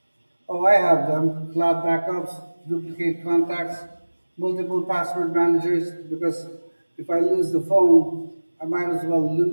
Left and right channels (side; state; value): both; inverted; correlation -1.00